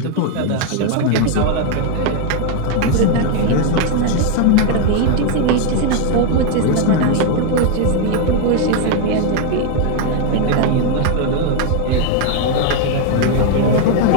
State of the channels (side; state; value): both; different; correlation 0.01